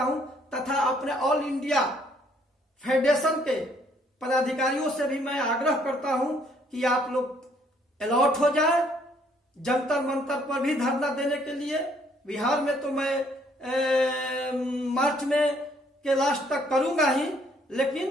तथा अपने ऑल इंडिया फेडरेशन के पदाधिकारियों से भी मैं आग्रह करता हूं कि आप लोग अलर्ट हो जाए, जंतर मंतर पर भी धरना देने के लिए। बिहार में तो मैं मार्च में के लास्ट तक करूंगा ही,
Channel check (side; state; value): both; normal; correlation 0.65